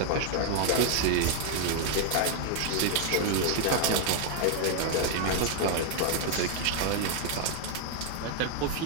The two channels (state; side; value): different; both; correlation 0.00